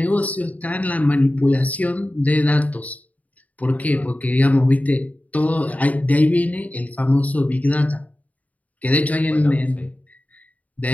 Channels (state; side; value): late; right; 0.072 ms